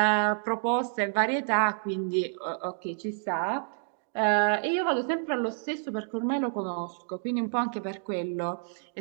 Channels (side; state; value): left; silent; digital silence